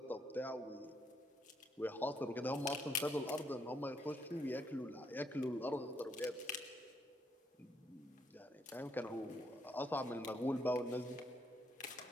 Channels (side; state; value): both; normal; correlation 0.74